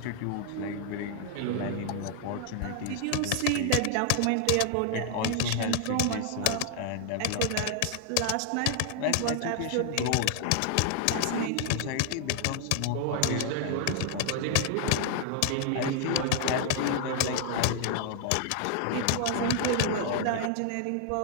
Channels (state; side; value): different; both; correlation 0.00